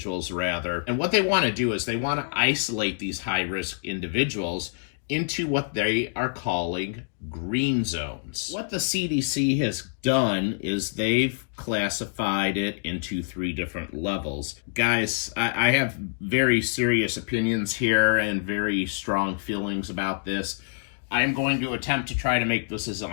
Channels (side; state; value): right; silent; digital silence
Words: rather. And what they want to do is they want to isolate these high-risk individuals into what they are calling green zones. What the CDC has done is they've classified it into 3 different levels. Guys, I have very serious opinions here and very strong feelings about this. I am going to attempt to try to make this as